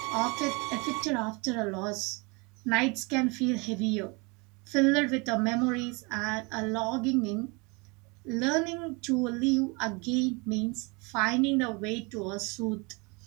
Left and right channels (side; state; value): left; quieter; 28.8 dB